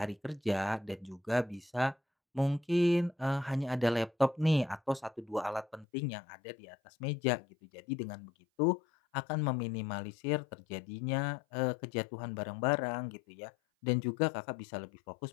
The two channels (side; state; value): right; drops out; at 5.9 s